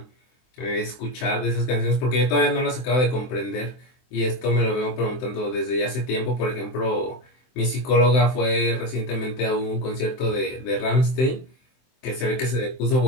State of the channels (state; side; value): late; right; 23 ms